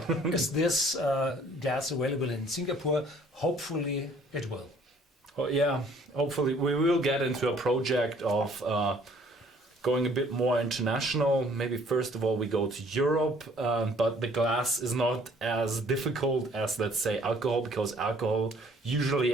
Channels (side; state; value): both; normal; correlation 0.58